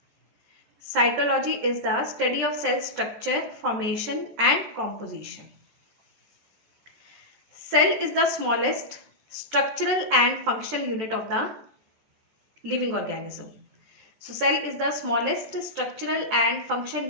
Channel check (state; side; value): late; left; 13 ms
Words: Cytology is the study of cell structure, formation and composition. Cell is the smallest structural and functional unit of the living organism. So cell is the smallest structural and functional